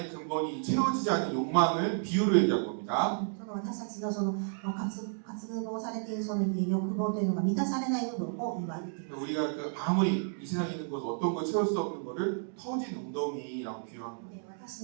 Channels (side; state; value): left; silent; digital silence